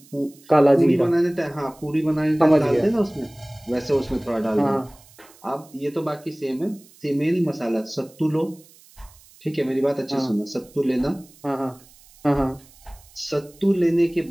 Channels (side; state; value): right; noise; hiss, 26 dB below the sound